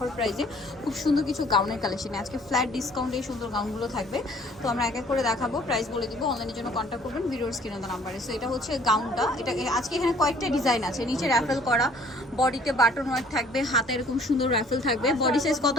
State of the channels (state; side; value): normal; both; correlation 0.56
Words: প্রাইসে খুব সুন্দর কিছু গাউনের কালেকশনে। আজকে ফ্ল্যাট ডিসকাউন্টে এই সুন্দর গাউনগুলো থাকবে। তো আমরা এক এক করে দেখাবো, প্রাইস বলে দিব। অনলাইনের জন্য কন্ট্যাক্ট করবেন ভিডিওর স্ক্রিনে দেওয়া নাম্বারে। সো এটা হচ্ছে গাউনটা। এটা আজকে এখানে কয়েকটা ডিজাইন আছে। নিচে র্যাফেল করা, বডিতে বাটন ওয়ার্ক থাকবে, হাতে এরকম সুন্দর র্যাফেল থাকবে। বডি সাইজ কত